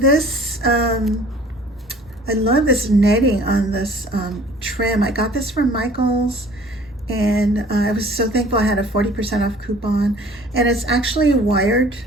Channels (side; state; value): both; normal; correlation 0.51